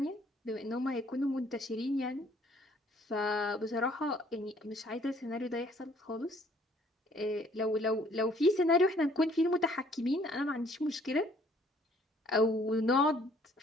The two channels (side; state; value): both; normal; correlation 0.60